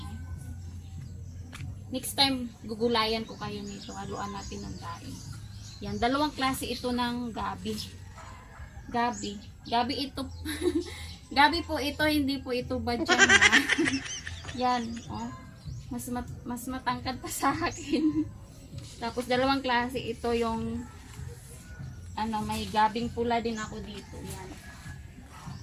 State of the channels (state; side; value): identical; both; correlation 1.00